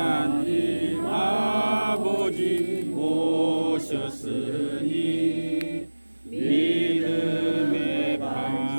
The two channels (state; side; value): inverted; both; correlation -1.00